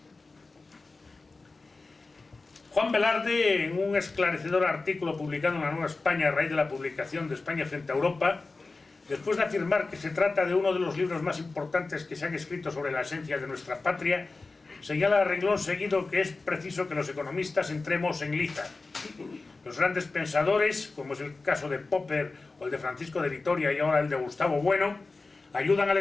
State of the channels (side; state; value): right; quieter; 3.7 dB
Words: Juan Velarde, en un esclarecedor artículo publicado en La Nueva España a raíz de la publicación de España frente a Europa, después de afirmar que se trata de uno de los libros más importantes que se han escrito sobre la esencia de nuestra patria, señala a renglón seguido que es preciso que los economistas entremos en liza. Los grandes pensadores, como es el caso de Popper o el de Francisco de Vitoria y ahora el de Gustavo Bueno, ayudan al